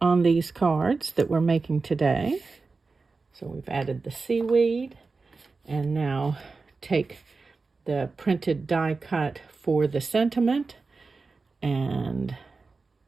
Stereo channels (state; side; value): quieter; left; 4.1 dB